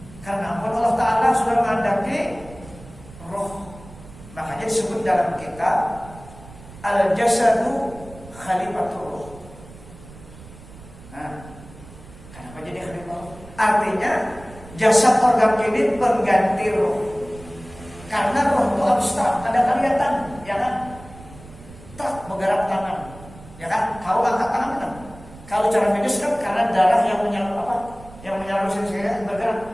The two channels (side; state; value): right; noise; rumble, 19 dB below the sound